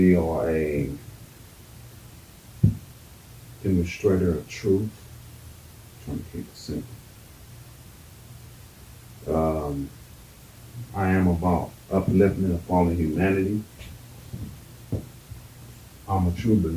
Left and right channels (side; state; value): both; identical; correlation 1.00